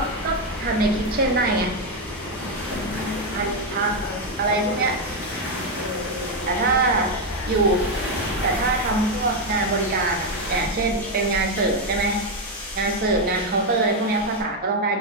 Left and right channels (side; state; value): both; normal; correlation 0.05